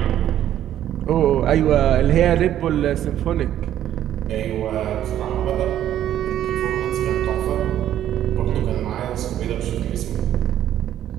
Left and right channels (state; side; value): quieter; left; 11.5 dB